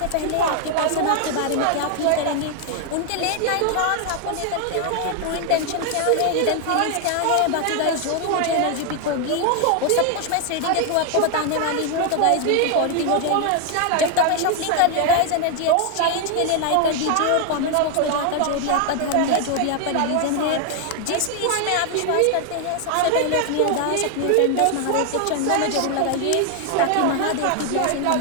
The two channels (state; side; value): different; both; correlation 0.00